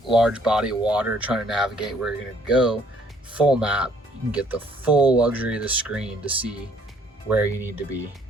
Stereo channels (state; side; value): normal; both; correlation 0.62